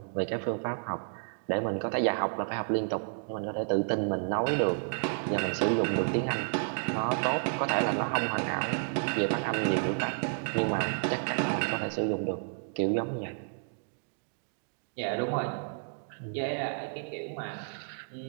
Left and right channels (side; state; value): left; silent; digital silence